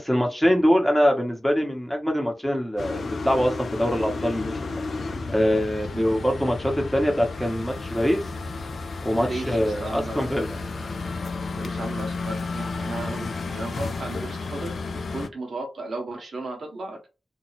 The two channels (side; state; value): both; normal; correlation 0.95